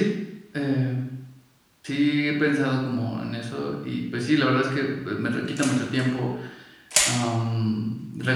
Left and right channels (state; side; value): identical; both; correlation 1.00